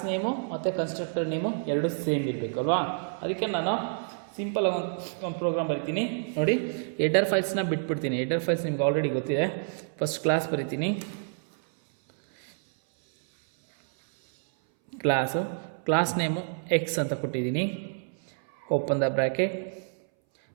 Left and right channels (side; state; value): left; silent; 59 dB below the other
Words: ನೇಮು ಮತ್ತು ಕನ್ಸ್ಟ್ರಕ್ಟರ್ ನೇಮು ಎರಡು ಸೇಮ್ ಇರಬೇಕು ಅಲ್ವಾ. ಅದಕ್ಕೆ ನಾನು ಸಿಂಪಲ್ ಒಂದು ಪ್ರೋಗ್ರಾಮ್ ಬರಿತೀನಿ ನೋಡಿ. ಹೆಡರ್ ಫೈಲ್ಸ್ನ ಬಿಟ್ಬಿಡ್ತೀನಿ. ಹೆಡರ್ ಫೈಲ್ಸ್ ನಿಮ್ಗೆ ಆಲ್ರೆಡಿ ಗೊತ್ತಿದೆ. ಫಸ್ಟ್ ಕ್ಲಾಸ್ ಬರಿತೀನಿ, ಕ್ಲಾಸ್ ನೇಮು ಎಕ್ಸ್ ಅಂತ ಕೊಟ್ಟಿದ್ದೀನಿ. Open the bracket,